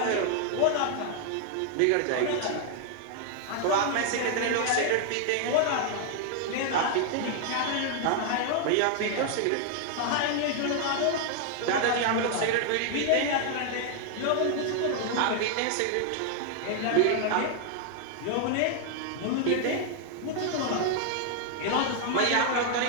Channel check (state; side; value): different; both; correlation 0.00